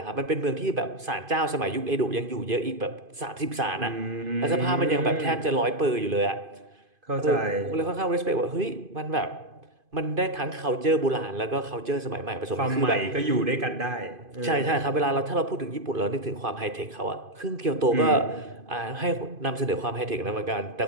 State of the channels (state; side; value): late; left; 2.5 ms